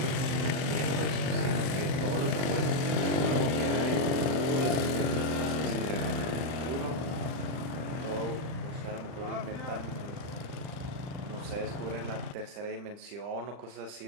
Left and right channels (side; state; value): left; late; 39 ms